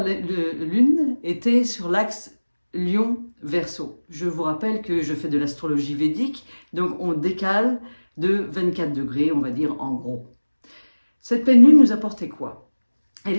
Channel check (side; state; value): both; inverted; correlation -1.00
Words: lune était sur l'axe Lion-Verseau. Je vous rappelle que je fais de l'astrologie védique, donc on décale de 24 degrés, on va dire en gros. Cette pleine lune nous apportait quoi? Elle